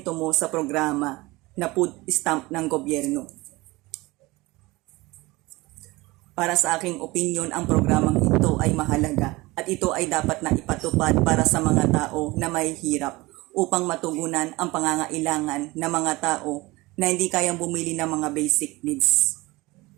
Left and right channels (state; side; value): quieter; left; 21.4 dB